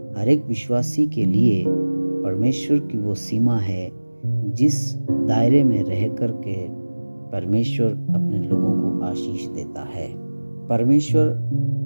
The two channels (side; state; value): both; inverted; correlation -1.00